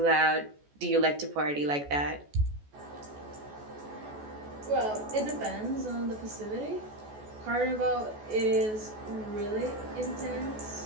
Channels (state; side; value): late; left; 14 ms